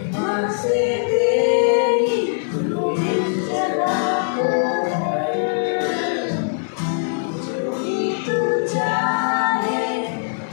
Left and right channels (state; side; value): silent; right; digital silence